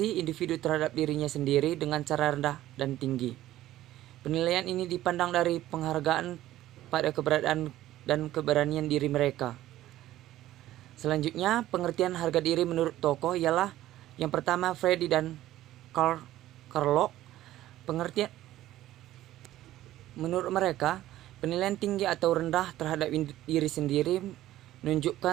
individu terhadap dirinya sendiri dengan cara rendah dan tinggi. Penilaian ini dipandang dari penghargaan pada keberadaan dan keberanian diri mereka. Selanjutnya, pengertian harga diri menurut tokoh ialah yang pertama Freddy dan Carlo. Pengertian menurut mereka, penilaian tinggi atau rendah terhadap diri sendiri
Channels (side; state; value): left; quieter; 14.4 dB